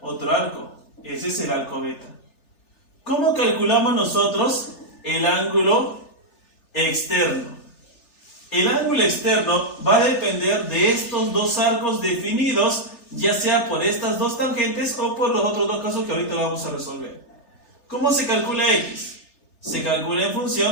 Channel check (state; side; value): late; right; 3.4 ms